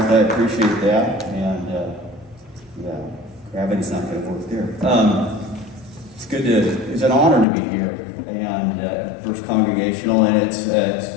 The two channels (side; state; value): right; drops out; at 7.5 s